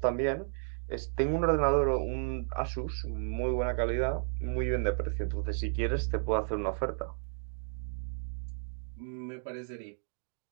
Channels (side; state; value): left; silent; digital silence